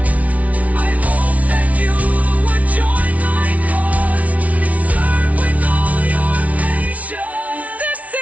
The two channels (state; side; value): late; left; 0.068 ms